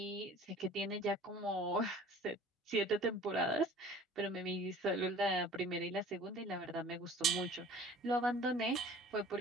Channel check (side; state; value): both; normal; correlation 0.47